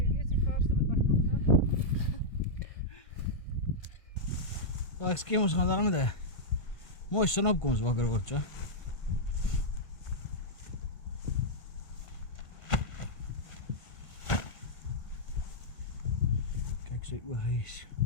Maar ek skiem ons gaan daar met 'n Mooi sonopkoms wakker word, so. Kyk sy ooghuis.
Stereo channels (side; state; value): right; late; 1.5 ms